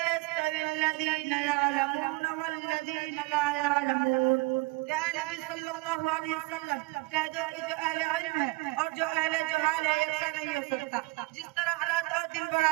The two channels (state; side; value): quieter; left; 23.2 dB